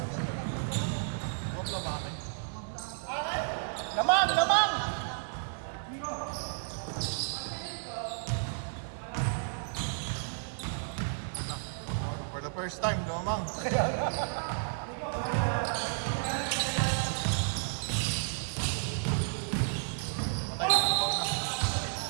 Lamang! For the first time, lumamang. Patay na, ikaw na.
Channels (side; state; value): left; silent; 56 dB below the other